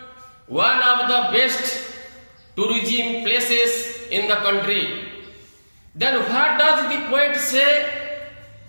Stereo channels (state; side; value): inverted; both; correlation -1.00